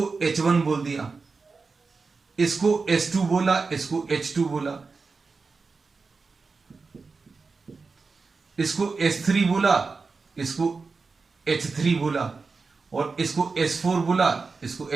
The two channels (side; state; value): left; quieter; 4.4 dB